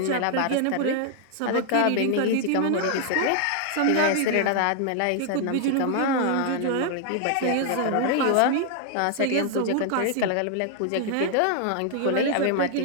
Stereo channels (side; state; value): both; different; correlation 0.00